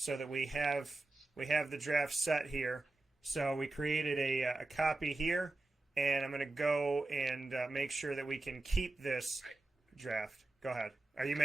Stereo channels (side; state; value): left; quieter; 3.0 dB